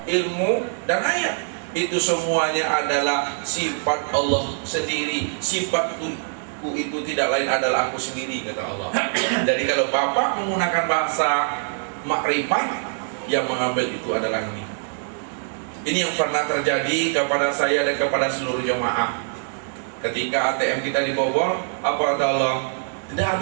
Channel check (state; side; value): silent; left; digital silence